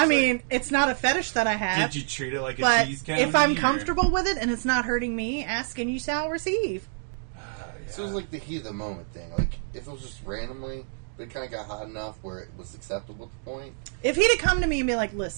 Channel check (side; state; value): left; silent; digital silence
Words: mean, it's not a fetish that I have. Did you treat it like a but cheese candy? if I'm or- comfortable with it and it's not hurting me, ask and you shall receive. Yeah. So it was like the heat of the moment thing. Like, if it was just randomly, but it kind of got hot enough where it was acceptable at the point. If he'd have come to me and be like,